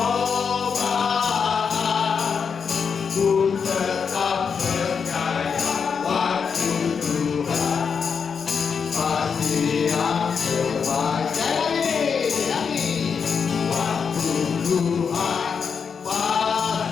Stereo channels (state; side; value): quieter; right; 6.2 dB